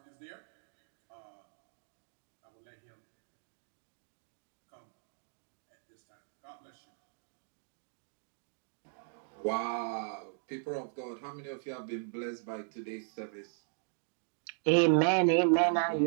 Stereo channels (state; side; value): silent; left; digital silence